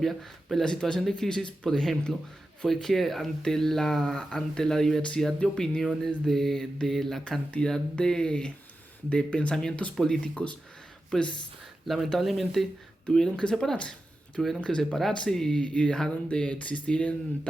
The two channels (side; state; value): both; normal; correlation 0.92